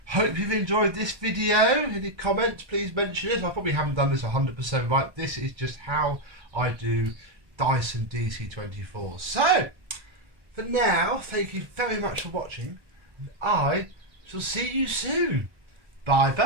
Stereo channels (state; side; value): late; left; 1.2 ms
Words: Hope you've enjoyed this video. Any comments, please mention it. I probably haven't done this 100% right. This is just how I do Dyson DC24. So for now, thank you very much for watching, and I shall see you soon. Bye